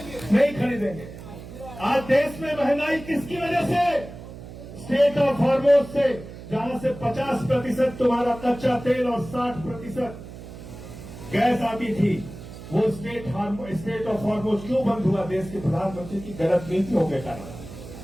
नहीं खरीदेंगे। आज देश में महंगाई किसकी वजह से? स्टेट ऑफ हॉर्मोज से, जहां से 50% तुम्हारा कच्चा तेल और 60% गैस आती थी। वो स्टेट ऑफ हॉर्मोज क्यों बंद हुआ? देश के प्रधानमंत्री की गलत नीतियों के कारण।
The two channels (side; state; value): right; noise; hum, 14 dB below the sound